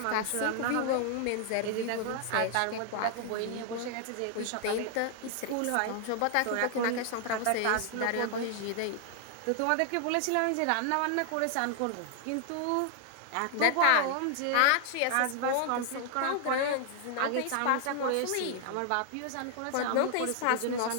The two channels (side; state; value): both; different; correlation 0.00